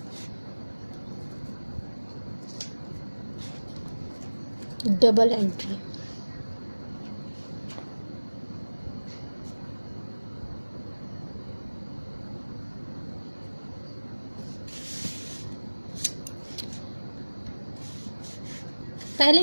double entry. पहले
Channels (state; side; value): inverted; both; correlation -1.00